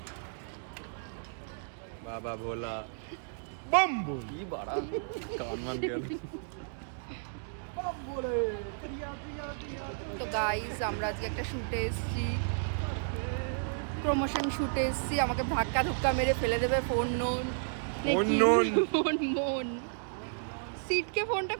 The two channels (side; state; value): left; silent; digital silence